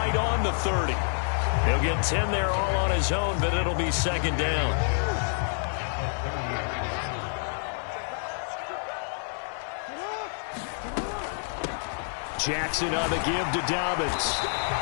on the 30. He'll get 10 there all on his own, but it'll be second down. Jackson on the give to Dobbins.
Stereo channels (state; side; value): silent; right; 56 dB below the other